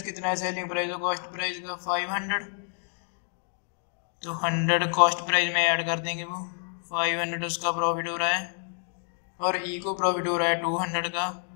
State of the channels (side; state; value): right; silent; digital silence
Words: कितना है सेलिंग प्राइस और कॉस्ट प्राइस का 500, तो 100 कॉस्ट प्राइस में ऐड कर देंगे, वो 500 उसका प्रॉफिट हो रहा है और ई को प्रॉफिट हो रहा है 200 का,